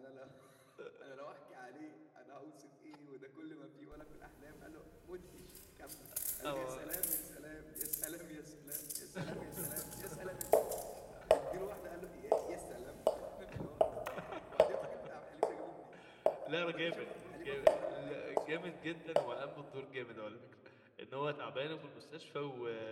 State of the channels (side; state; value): both; identical; correlation 1.00